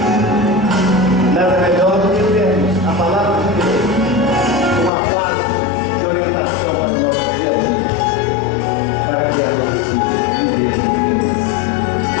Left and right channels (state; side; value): drops out; right; at 4.9 s